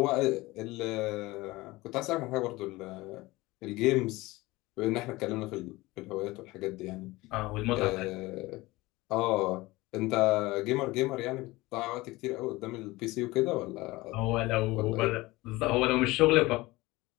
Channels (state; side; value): quieter; right; 20.4 dB